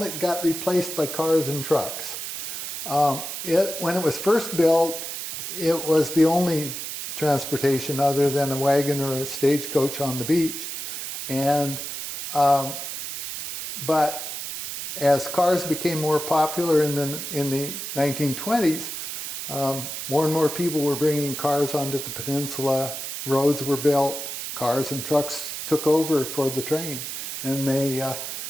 it got replaced by cars and trucks. When it was first built, it was the only transportation other than a wagon or a stagecoach on the beach. But as cars became more popular in the 1920s, more and more people were bringing cars onto the peninsula. Roads were built, cars and trucks took over for the train, and they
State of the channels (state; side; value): noise; right; hiss, 6 dB below the sound